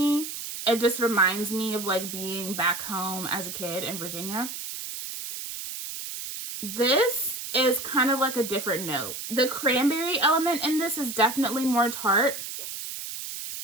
It just reminds me of like being back home as a kid in Virginia. This is kind of like a different note. The cranberry element in this is definitely more tart.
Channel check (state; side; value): noise; right; hiss, 7 dB below the sound